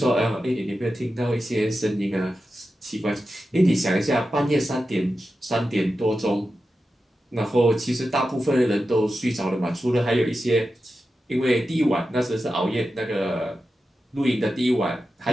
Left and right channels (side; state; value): both; normal; correlation 0.91